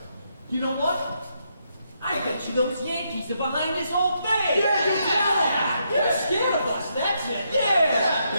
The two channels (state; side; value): inverted; both; correlation -0.78